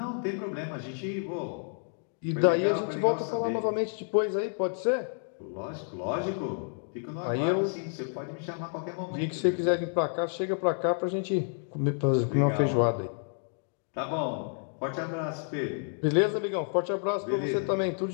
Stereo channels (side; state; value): right; silent; 58 dB below the other